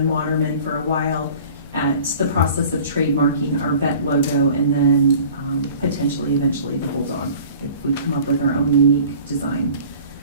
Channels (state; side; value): inverted; both; correlation -0.46